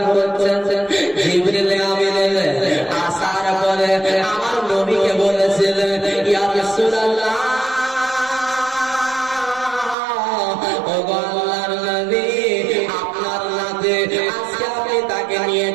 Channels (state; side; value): drops out; left; at 10.0 s